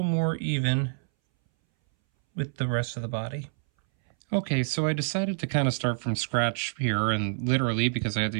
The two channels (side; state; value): left; silent; 60 dB below the other